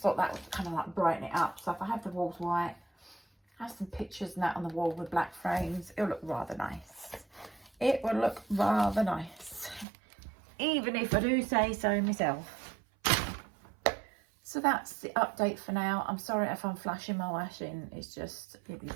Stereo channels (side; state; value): left; drops out; at 9.9 s